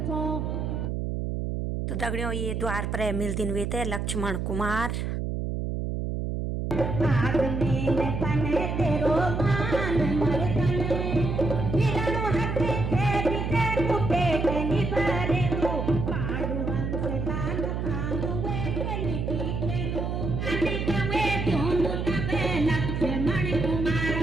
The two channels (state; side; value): noise; right; hum, 2 dB below the sound